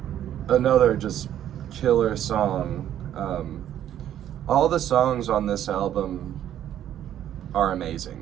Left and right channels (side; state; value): left; quieter; 11.1 dB